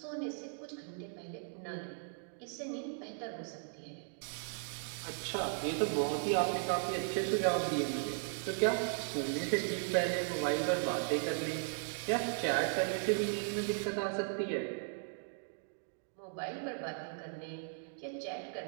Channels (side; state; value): left; silent; digital silence